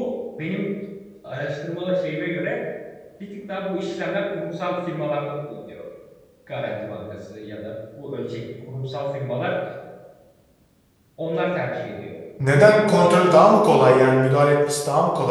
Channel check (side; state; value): both; identical; correlation 1.00